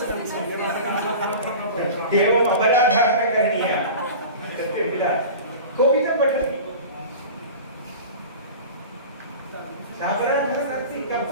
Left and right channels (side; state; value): both; inverted; correlation -0.35